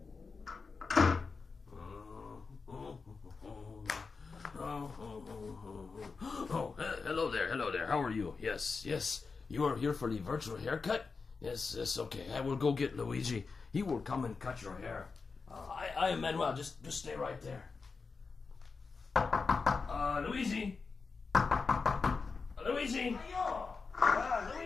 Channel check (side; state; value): right; quieter; 4.6 dB